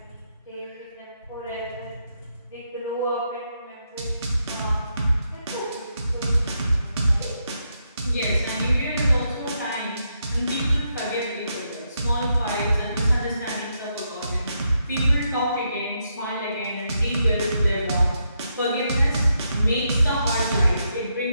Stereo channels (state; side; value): inverted; both; correlation -0.80